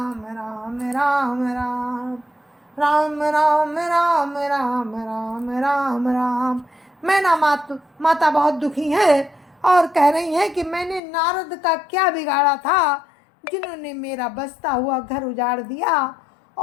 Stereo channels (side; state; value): right; drops out; at 11.0 s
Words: राम राम राम राम राम राम राम राम राम राम। मैना माता बहुत दुखी है और कह रही हैं कि मैंने नारद का क्या बिगाड़ा था, जिन्होंने मेरा बसता हुआ घर उजाड़ दिया